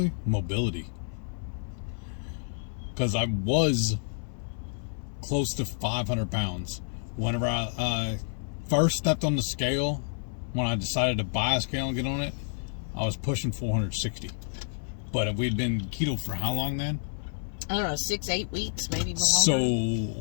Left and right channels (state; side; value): silent; right; 58 dB below the other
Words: mobility. Because I was close to 500 pounds. Whenever I first stepped on the scale, when I decided to buy a scale and get on it, I was pushing 460. But we'd been keto for how long then? I don't know, 6-8 weeks, maybe more.